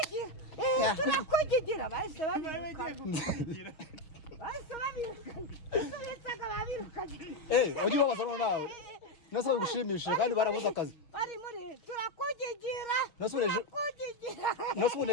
nakugigira bahise babirukana ujye ubabaza no nawe nose bagushimisha kandi barabuza akazi bari muri turakugigira nose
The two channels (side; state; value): right; late; 6.4 ms